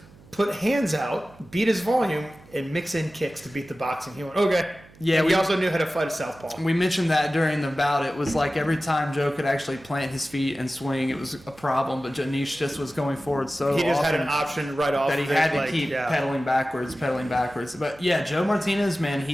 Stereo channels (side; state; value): right; noise; hum, 24 dB below the sound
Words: put hands out, beat his volume, and mix in kicks to beat the boxing. He went, okay. Yeah, and he also knew how to fight a southpaw. We mentioned that during the bout. It was like every time Joe could actually plant his feet and swing, it was a problem. But Anish just was going forward so he just had an option right off that he had to keep pedaling backwards. But yeah, Joe Martinez, man,